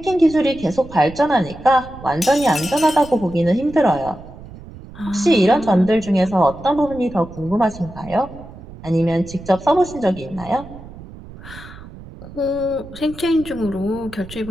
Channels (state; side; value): noise; right; rumble, 16 dB below the sound